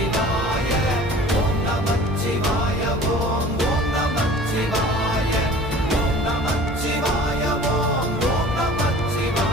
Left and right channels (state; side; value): normal; both; correlation 0.45